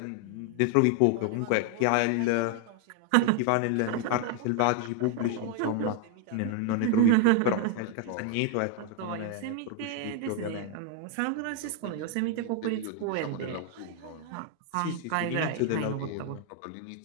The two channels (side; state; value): both; different; correlation 0.01